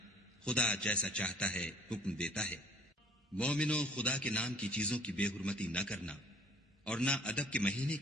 خدا جیسا چاہتا ہے حکم دیتا ہے۔ مومنو، خدا کے نام کی چیزوں کی بے حرمتی نہ کرنا، اور نہ ادب کے مہینے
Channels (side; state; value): both; normal; correlation 0.54